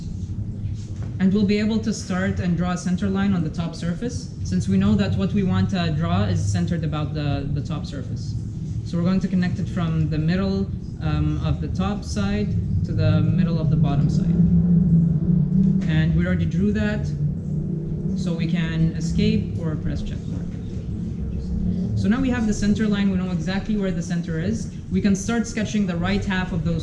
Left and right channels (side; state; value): both; identical; correlation 1.00